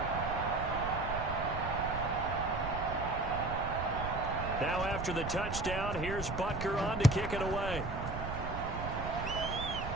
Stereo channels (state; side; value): noise; right; rumble, 6 dB below the sound